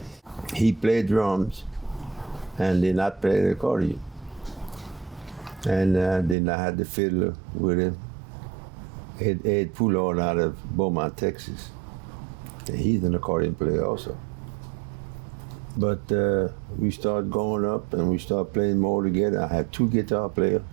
He played drums, and then I played the accordion. And then I had the fiddler with him, Ed Poulard out of Beaumont, Texas. And he's an accordion player also. But we started going up and we started playing more together. I had 2 guitar players.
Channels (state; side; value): drops out; left; at 6.4 s